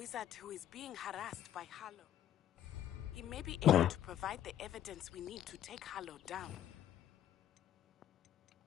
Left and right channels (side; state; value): right; quieter; 11.4 dB